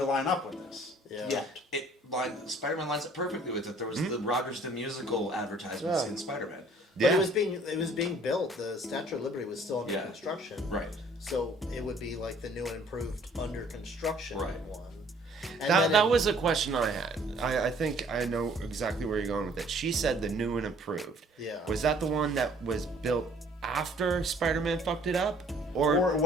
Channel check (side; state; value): both; normal; correlation 0.57